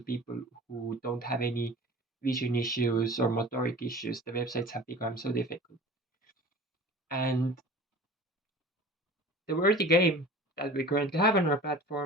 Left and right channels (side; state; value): both; normal; correlation 0.41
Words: people who don't have any vision issues or motoric issues. The websites have become so difficult. And the worthy game that we currently have on our